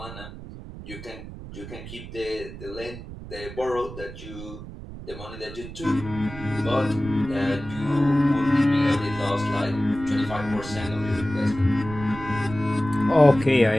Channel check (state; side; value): noise; right; rumble, 12 dB below the sound